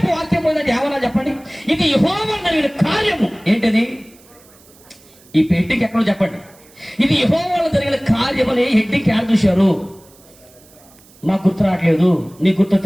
వాక్యం పోయిందంటే ఏమన్నా చెప్పండి. ఇది యెహోవా జరిగిన కార్యము. ఏంటది? ఈ పెట్టికి ఎక్కడో చెప్పండి. ఇది యెహోవాలో జరిగిన కార్యమని హెడ్డింగ్ యాడ్ చూశారు. నాకు గుర్తు రావట్లేదు, నీకు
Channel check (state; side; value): noise; right; hiss, 27 dB below the sound